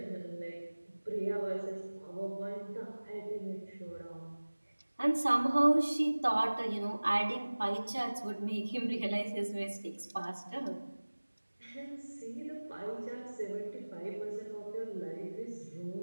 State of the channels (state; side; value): inverted; both; correlation -1.00